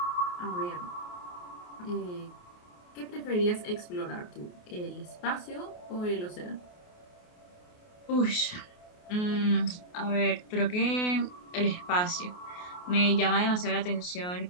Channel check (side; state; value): right; late; 28 ms